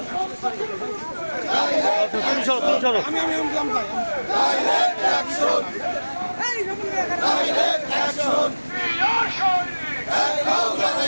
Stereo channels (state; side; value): inverted; both; correlation -1.00